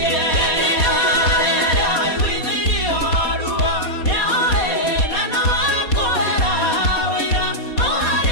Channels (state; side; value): late; right; 4.2 ms